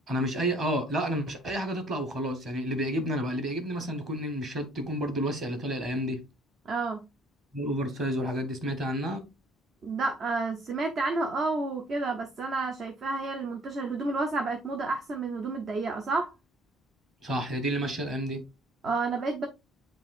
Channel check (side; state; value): both; normal; correlation 0.58